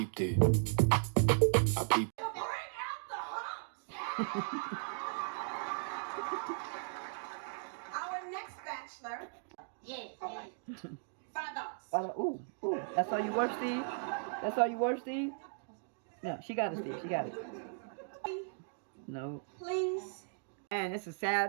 it. I peeped. Bring out the humps. Our next bachelor. Yes. $5. Ooh. That's all you worth, Steve? That's all you worth, Steve? No, she got it, Steve. She got it. No. Please. Man, this is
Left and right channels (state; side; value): silent; left; digital silence